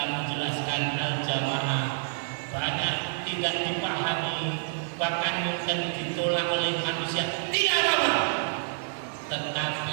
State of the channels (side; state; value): left; silent; digital silence